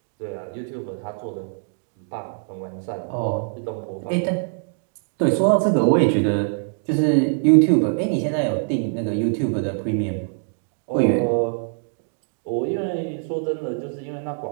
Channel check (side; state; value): left; silent; digital silence